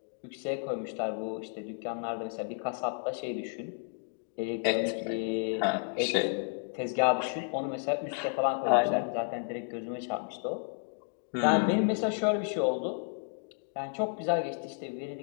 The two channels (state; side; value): silent; right; 56 dB below the other